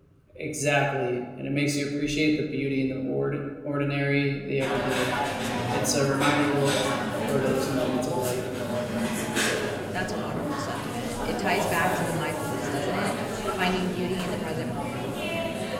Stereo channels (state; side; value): identical; both; correlation 1.00